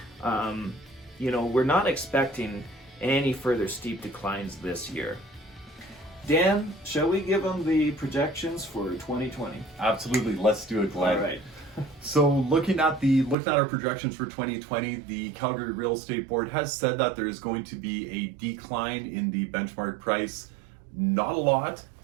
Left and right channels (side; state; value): left; drops out; at 13.4 s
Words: We're not expecting any further steep declines this year. Dan, shall we give them the projections for 2020? Absolutely, let's do it, Glenn. All right. So looking at our projections for 2020, the Calgary Real Estate Board has said that there is going to be a decline in the benchmark price. Not a lot.